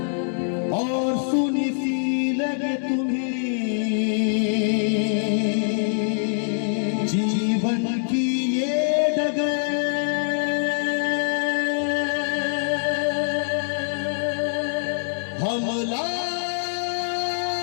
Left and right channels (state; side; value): silent; right; digital silence